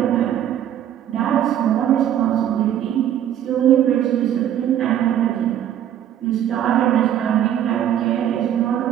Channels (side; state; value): left; quieter; 10.7 dB